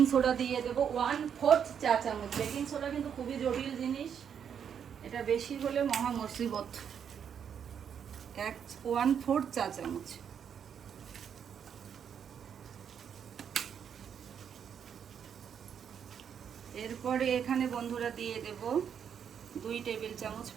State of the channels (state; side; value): quieter; left; 7.9 dB